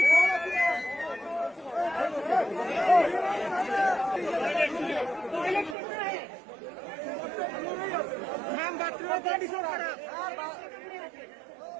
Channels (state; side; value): drops out; left; at 5.8 s